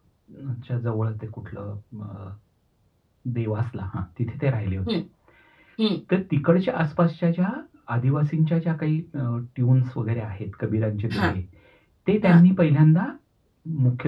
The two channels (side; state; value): both; identical; correlation 1.00